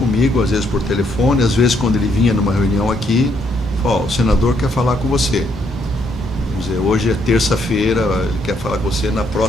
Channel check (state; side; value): normal; both; correlation 0.72